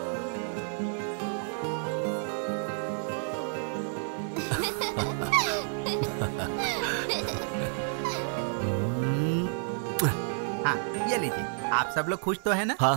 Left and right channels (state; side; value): silent; left; 56 dB below the other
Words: हाँ ये लीजिए। आप सब लोग खुश तो है ना?